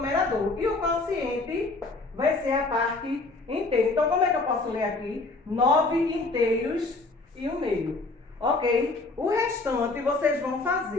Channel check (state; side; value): quieter; right; 3.4 dB